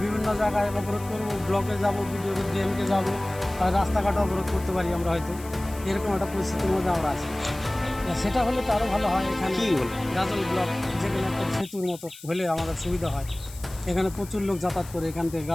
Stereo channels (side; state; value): left; noise; hiss, 18 dB below the sound